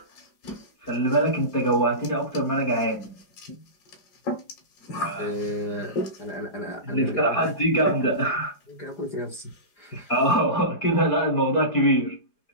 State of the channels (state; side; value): late; right; 4.9 ms